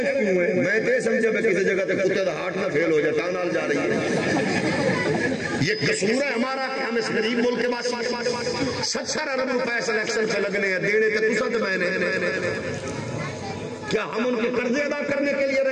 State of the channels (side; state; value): both; identical; correlation 1.00